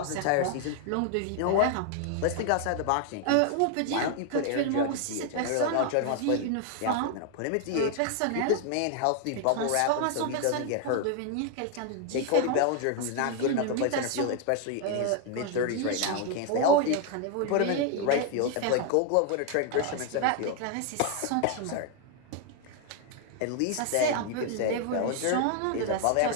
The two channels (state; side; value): different; both; correlation 0.00